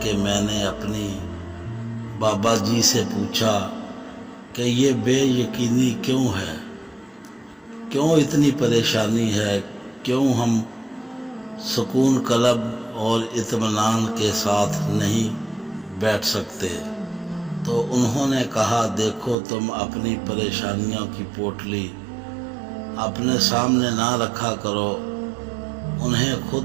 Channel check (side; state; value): left; drops out; at 19.4 s